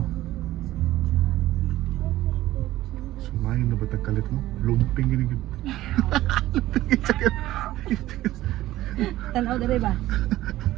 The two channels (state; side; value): quieter; left; 15.5 dB